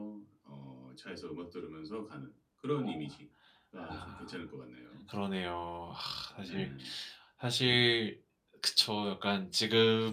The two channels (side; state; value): both; identical; correlation 1.00